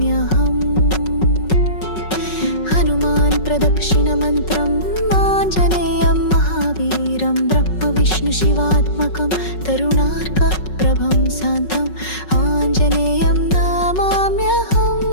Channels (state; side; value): late; right; 5.4 ms